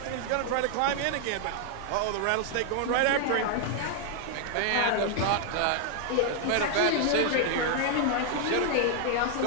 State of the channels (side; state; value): both; different; correlation 0.00